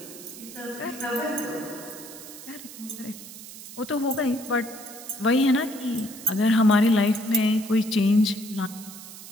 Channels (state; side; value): noise; right; hiss, 14 dB below the sound